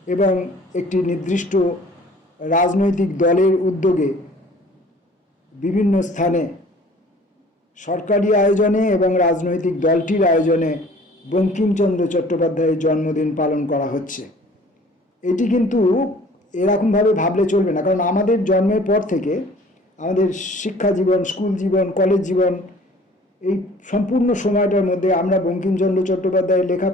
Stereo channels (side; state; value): both; normal; correlation 0.51